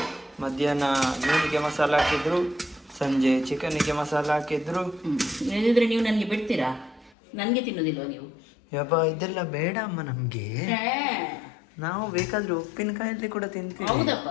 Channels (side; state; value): right; drops out; at 7.2 s